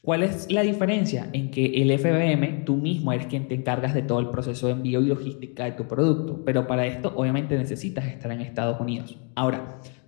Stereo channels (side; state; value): right; quieter; 38.9 dB